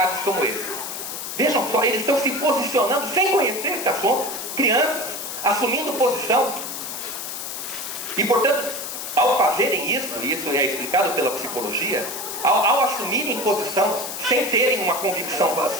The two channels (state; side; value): noise; left; hiss, 6 dB below the sound